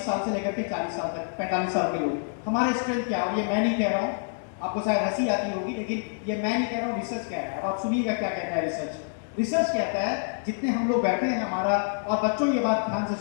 साल से लेकर के 40 साल तक, 45 साल के लोग, हमारा स्ट्रेंथ क्या है? और ये मैं नहीं कह रहा हूँ, आपको शायद हंसी आती होगी, लेकिन ये मैं नहीं कह रहा हूँ, रिसर्च कह रहा है। अब आप सुनिएगा क्या कहता है रिसर्च। रिसर्च कहता है, जितने हम लोग बैठे हैं हमारा, और बच्चों ये बात ध्यान से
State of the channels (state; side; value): silent; right; digital silence